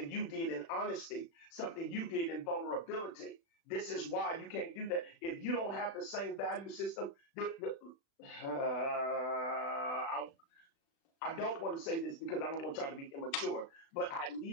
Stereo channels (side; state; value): right; late; 36 ms